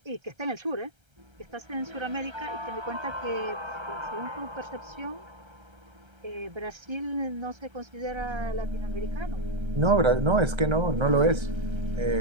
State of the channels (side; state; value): left; late; 1.3 ms